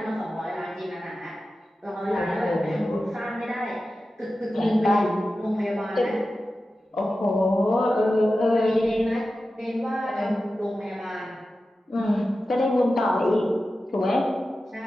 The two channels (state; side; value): normal; both; correlation 0.93